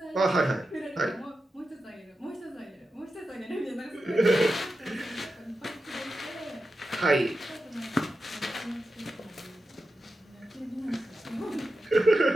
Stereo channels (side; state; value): both; normal; correlation 0.90